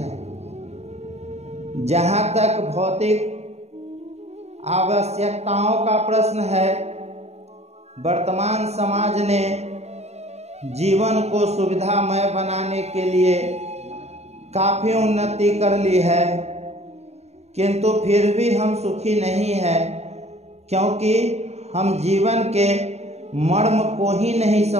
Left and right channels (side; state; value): left; late; 0.31 ms